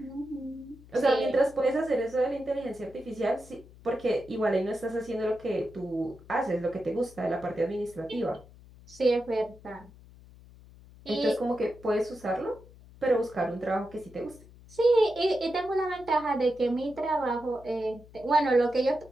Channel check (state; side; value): noise; left; hum, 22 dB below the sound